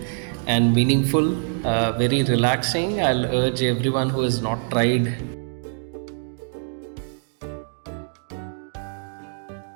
and meaningful, very relaxing. I'll urge everyone who has not tried.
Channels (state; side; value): silent; left; 63 dB below the other